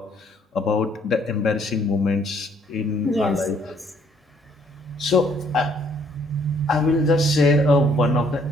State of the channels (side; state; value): both; normal; correlation 0.64